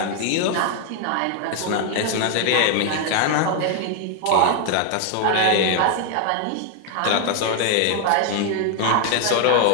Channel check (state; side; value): different; both; correlation 0.00